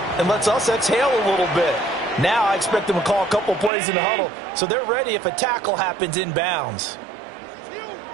and lets us exhale a little bit. Now I expect them to call a couple plays in the huddle, so they're ready if a tackle happens inbounds.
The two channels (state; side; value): drops out; left; at 3.7 s